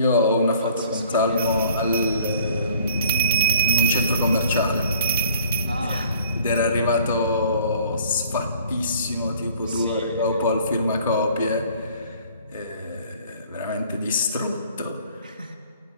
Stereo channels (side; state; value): both; inverted; correlation -0.54